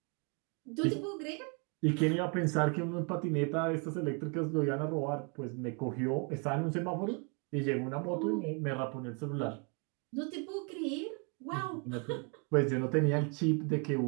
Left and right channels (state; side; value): quieter; left; 35.6 dB